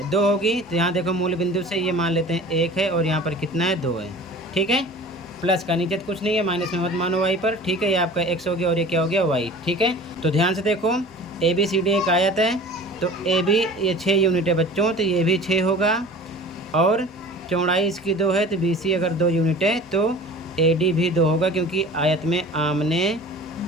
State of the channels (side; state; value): both; normal; correlation 0.41